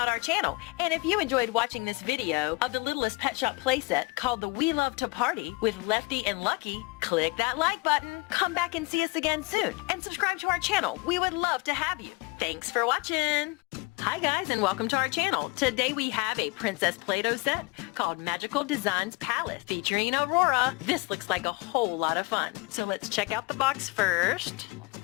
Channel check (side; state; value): right; quieter; 26.1 dB